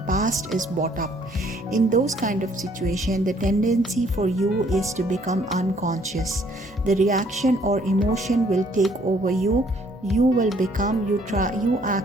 past is brought up. In those kind of situations, the tendency for you is to become unconscious. The reaction or emotion will take over you. You will become, you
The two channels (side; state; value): both; normal; correlation 0.63